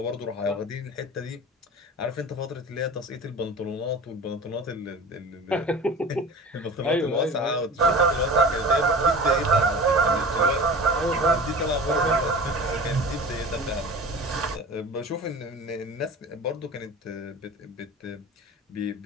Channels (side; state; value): both; normal; correlation 0.37